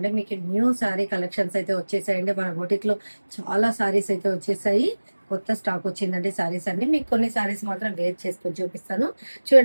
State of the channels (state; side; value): inverted; both; correlation -1.00